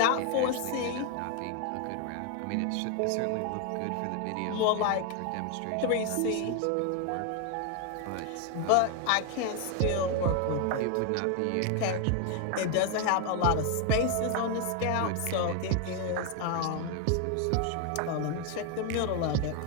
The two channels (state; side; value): different; both; correlation 0.01